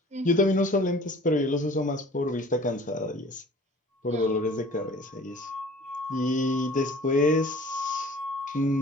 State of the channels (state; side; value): normal; both; correlation 0.48